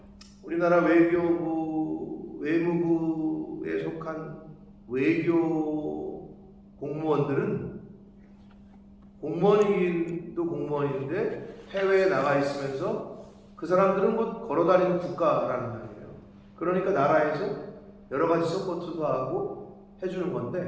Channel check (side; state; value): both; identical; correlation 1.00